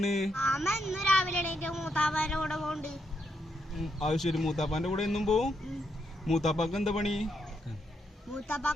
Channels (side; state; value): both; normal; correlation 0.79